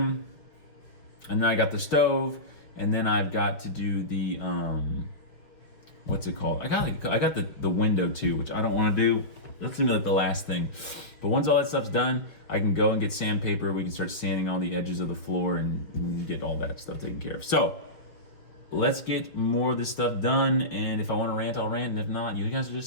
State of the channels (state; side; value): late; right; 5.3 ms